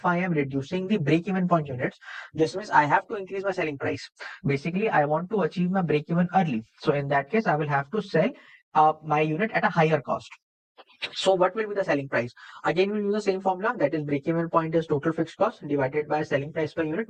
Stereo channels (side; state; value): both; identical; correlation 1.00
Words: I am reducing the break-even point units, this means I have to increase my selling price. Basically, I want to achieve my break-even early. So in that case, I will have to sell my unit at a higher cost. So what will be the selling price? Again, we'll use the same formula, that is break-even point is total fixed cost divided by selling price per unit